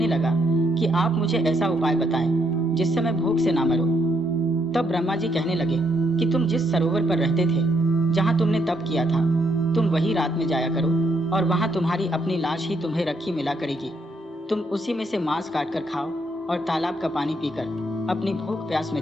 लगा कि आप मुझे ऐसा उपाय बताएं जिससे मैं भूख से ना मरूं। तब ब्रह्मा जी कहने लगे कि तुम जिस सरोवर पर रहते थे, जहाँ तुमने तप किया था, तुम वही रात में जाया करो और वहाँ तुम्हारी अपनी लाश ही तुम्हें रखी मिला करेगी। तुम उसी में से मांस काट कर खाओ और तालाब का पानी पीकर अपनी भूख प्यास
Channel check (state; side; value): normal; both; correlation 0.74